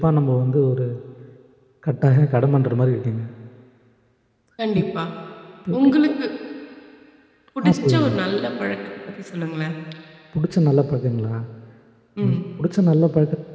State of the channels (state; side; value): identical; both; correlation 1.00